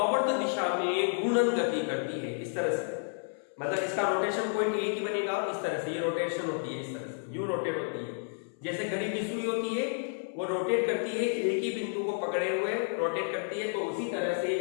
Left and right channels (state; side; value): silent; right; 57 dB below the other